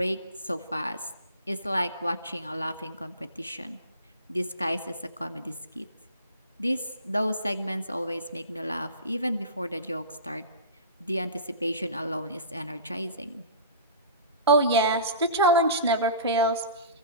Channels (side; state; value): both; inverted; correlation -0.35